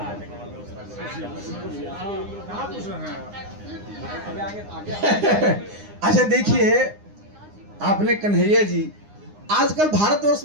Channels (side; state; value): left; late; 9.8 ms